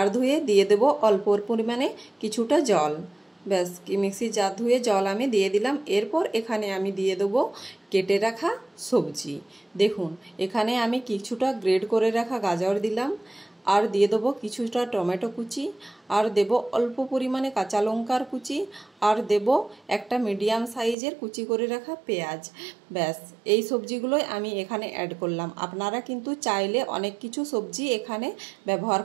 ধুয়ে দিয়ে দেব অল্প পরিমাণে কিছুটা জল। ব্যাস, মিক্সির জার ধুয়ে জল আমি দিয়ে দিলাম। এরপর এখানে আমি দিয়ে দেবো কেটে রাখা সবজি। দেখুন, এখানে আমি কিছুটা গ্রেড করে রাখা গাজর দিলাম, আর দিয়ে দেবো কিছুটা টমেটো কুচি, আর দেব অল্প পরিমাণে কাঁচা লঙ্কার কুচি, আর দেব একটা মিডিয়াম সাইজের কুচি করে রাখা পেঁয়াজ। ব্যাস, এই সবজিগুলোই আমি এখানে অ্যাড করলাম। আপনারা কিন্তু চাইলে অনেক কিছু সবজি এখানে ব্যবহার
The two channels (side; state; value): left; drops out; at 21.0 s